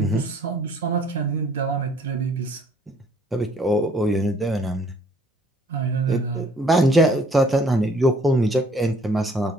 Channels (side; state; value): both; normal; correlation 0.59